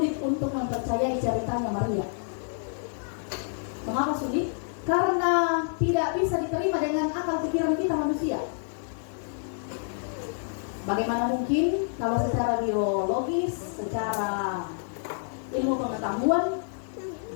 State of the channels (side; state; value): right; silent; digital silence